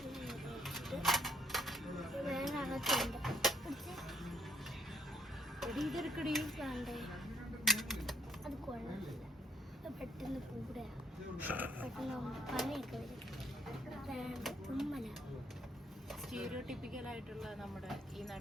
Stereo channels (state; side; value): normal; both; correlation 0.68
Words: അത് കൊള്ളാം. പെട്ടെന്ന് കൂടെ പെട്ടെന്ന് പനിയൊക്കെ വരും. സ്റ്റീരിയോടിപ്പിക്കൽ ആയിട്ടുള്ള നമ്മുടെ ഈ